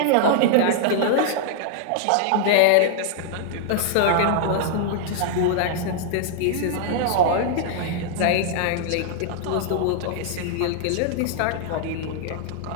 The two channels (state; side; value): different; both; correlation -0.01